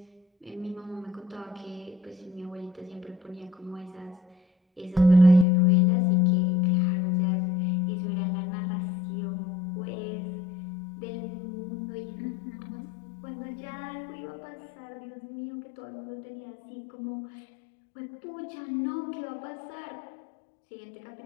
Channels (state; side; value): drops out; right; at 5.5 s